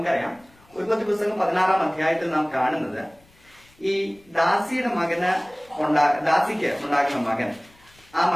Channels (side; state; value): left; noise; rumble, 30 dB below the sound